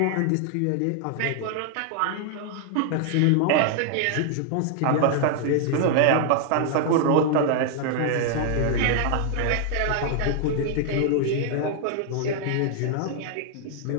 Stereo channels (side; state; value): both; different; correlation 0.00